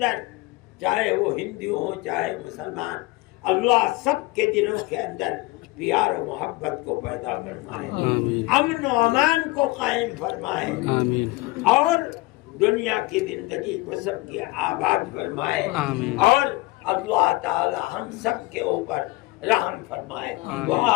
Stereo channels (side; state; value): right; quieter; 21.6 dB